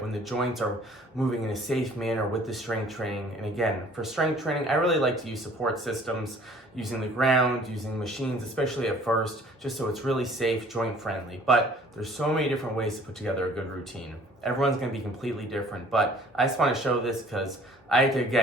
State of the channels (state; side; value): normal; both; correlation 0.53